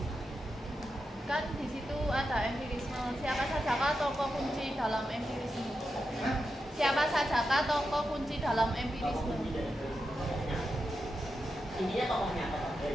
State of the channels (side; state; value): both; normal; correlation 0.88